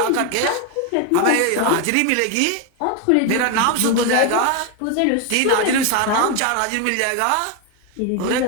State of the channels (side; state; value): both; different; correlation 0.02